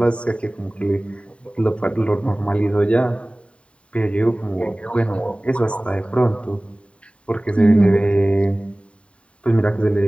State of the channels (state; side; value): late; right; 0.061 ms